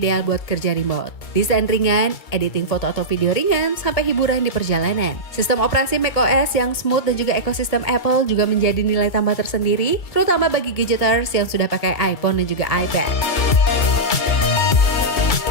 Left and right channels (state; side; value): late; right; 2.3 ms